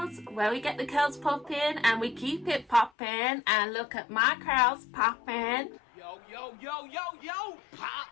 where we get the curls popping and we keep it popping. And look at my curls popping. Yo, yo, yo, yo, yo, pop,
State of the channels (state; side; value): drops out; right; at 2.9 s